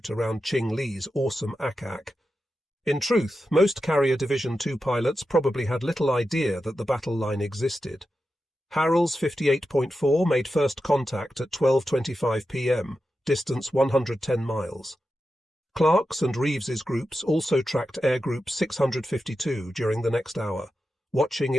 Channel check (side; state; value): both; normal; correlation 0.90